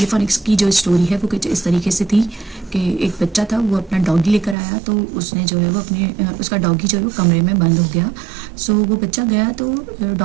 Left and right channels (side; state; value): left; drops out; at 4.5 s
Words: की जो स्टोरी है वो कुछ इस तरीके से थी कि एक बच्चा था, वो अपना डॉगी लेकर आया तो उसने जो है वो अपने उसका डॉगी जो है वो कमरे में बंद हो गया। सो वो बच्चा गया तो